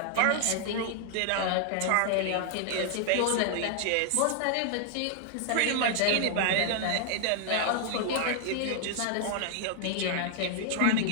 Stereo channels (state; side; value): different; both; correlation -0.01